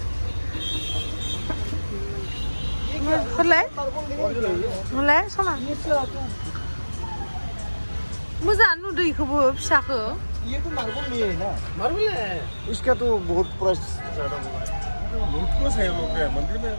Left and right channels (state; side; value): inverted; both; correlation -1.00